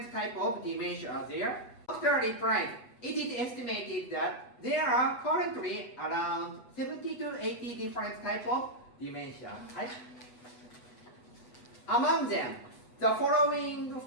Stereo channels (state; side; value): late; right; 8.1 ms